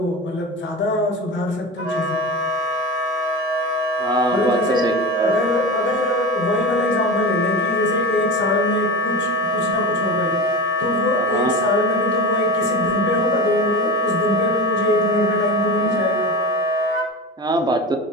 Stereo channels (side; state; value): both; normal; correlation 0.25